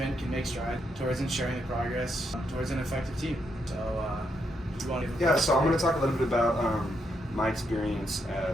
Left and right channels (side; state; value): both; normal; correlation 0.79